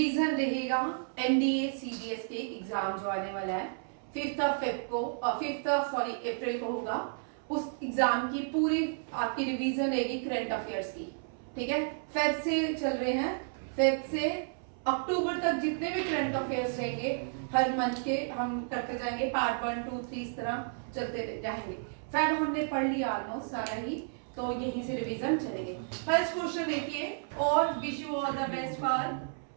रहेगा एनडीए सीडीएस के एग्जाम जो आने वाला है 5th अप्रैल को होगा। उस एग्जाम की पूरी आपकी रिवीजन रहेगी करंट अफेयर्स की। ठीक है, फेब से चल रहे हैं, फेब से अक्टूबर तक जितने भी करंट अफेयर्स रहेंगे हर मंथ के हम करते जाएंगे, पार्ट 1 2 3 इस तरह चलते जाएंगे। फेब हमने पढ़ लिया ऑलमोस्ट सारा ही, तो यहीं से रिवीजन चलेंगे। फर्स्ट क्वेश्चन देखिए, और wish you all the best for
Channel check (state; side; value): silent; left; 56 dB below the other